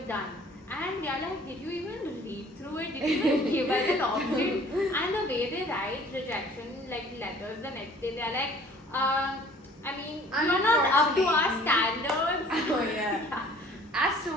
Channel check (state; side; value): normal; both; correlation 0.53